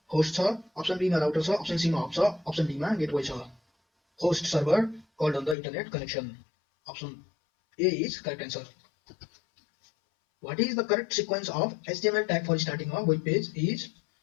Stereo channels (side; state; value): right; drops out; at 5.6 s